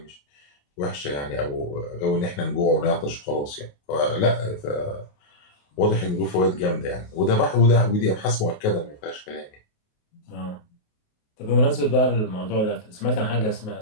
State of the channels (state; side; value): late; right; 28 ms